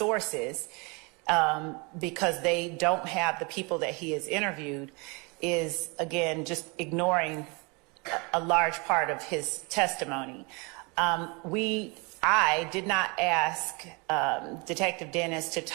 because they don't have the people that he has interviewed, is again just ignoring a large part of his testimony. I did not ask Detective Dennis to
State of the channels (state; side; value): quieter; left; 29.3 dB